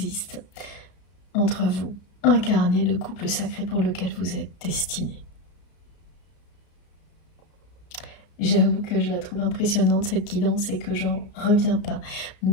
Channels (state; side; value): late; right; 34 ms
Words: entre vous. Incarner le couple sacré pour lequel vous êtes destiné. J'avoue que je la trouve impressionnante cette guidance et que j'en reviens pas.